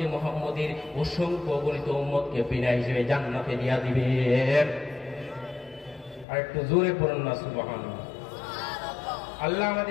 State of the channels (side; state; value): right; drops out; at 6.2 s